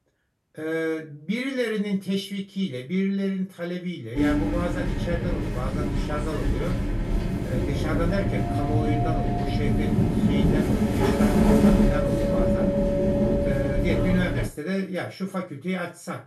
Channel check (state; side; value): identical; both; correlation 1.00